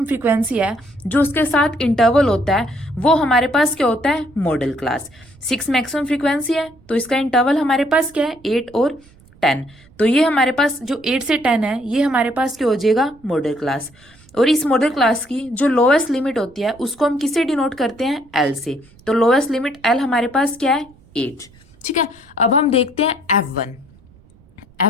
फ्रीक्वेंसी है जो उसके साथ इंटरवल होता है वो हमारे पास क्या होता है? Model class. 6 मैक्सिमम फ्रीक्वेंसी है तो इसका इंटरवल हमारे पास क्या है? 8 और 10। तो ये हमारे पास जो 8 से 10 है ये हमारे पास क्या हो जाएगा? Model class. और इस मॉडल क्लास की जो लोएस्ट लिमिट होती है उसको हम किससे डिनोट करते हैं? L से। तो लोएस्ट लिमिट L हमारे पास क्या है? 8। ठीक है। अब हम देखते हैं F1।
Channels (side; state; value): right; noise; rumble, 27 dB below the sound